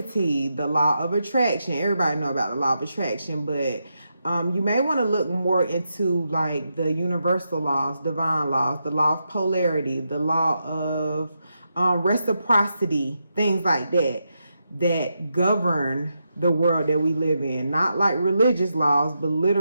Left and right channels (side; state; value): both; inverted; correlation -0.85